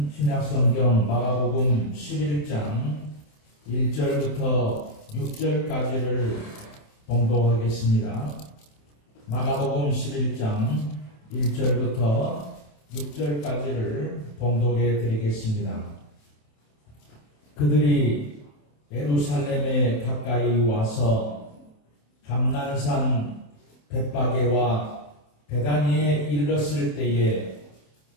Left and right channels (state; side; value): late; right; 27 ms